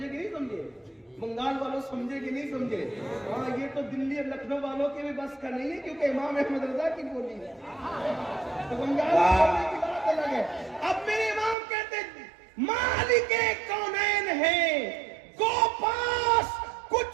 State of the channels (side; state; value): left; drops out; at 11.6 s